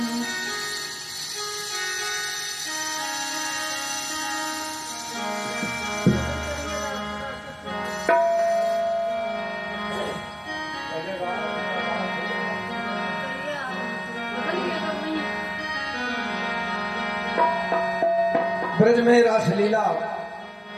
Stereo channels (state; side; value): identical; both; correlation 1.00